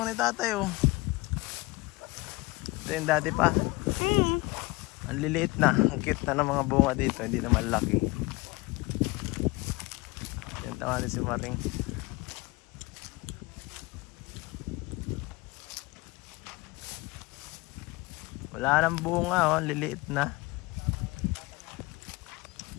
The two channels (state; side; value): quieter; right; 23.0 dB